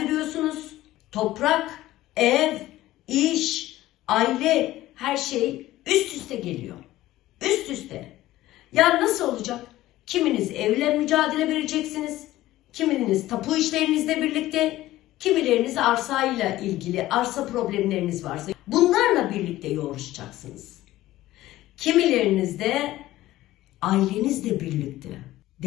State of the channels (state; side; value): quieter; right; 15.8 dB